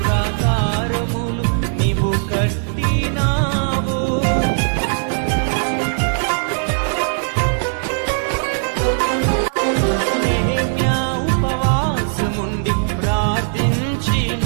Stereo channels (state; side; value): silent; left; 67 dB below the other